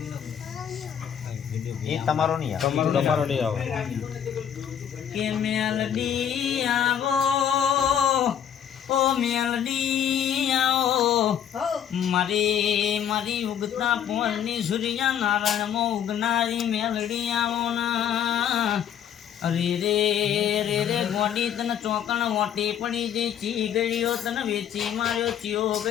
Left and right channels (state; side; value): quieter; right; 9.2 dB